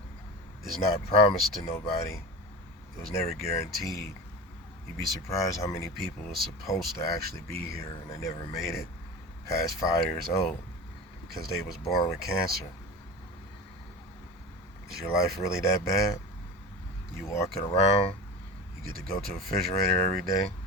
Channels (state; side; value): normal; both; correlation 0.30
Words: It's not promised to nobody. It was never guaranteed. You'd be surprised how many people were supposed to actually be here and they never made it past 5 years old because they was born with cancer. Is your life really that bad? You walking around, you get to go to a refrigerator every day,